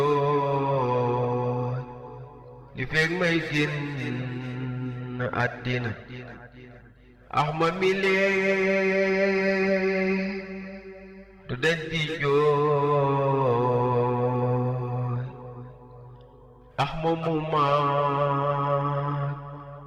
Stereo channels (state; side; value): identical; both; correlation 1.00